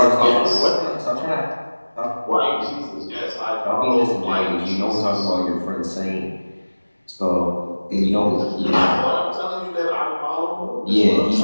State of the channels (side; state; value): both; inverted; correlation -1.00